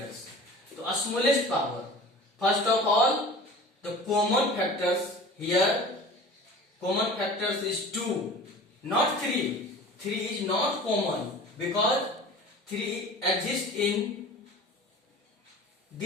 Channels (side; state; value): both; normal; correlation 0.40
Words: So smallest power, first of all the common factors. Here common factors is 2, not 3. 3 is not common because 3 exists in